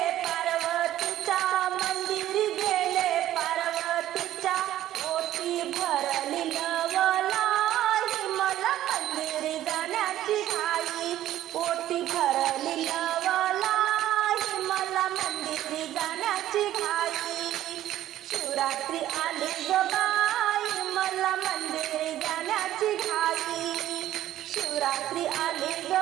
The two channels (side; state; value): left; quieter; 13.2 dB